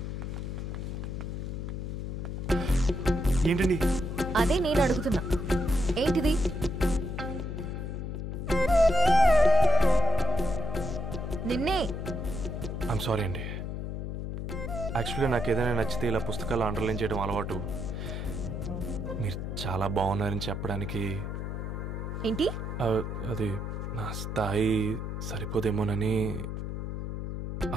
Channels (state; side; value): noise; left; hum, 4 dB below the sound